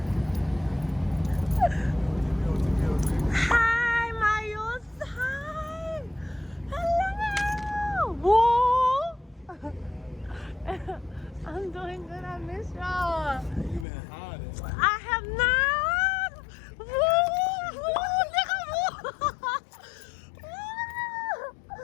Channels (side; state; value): right; drops out; at 13.9 s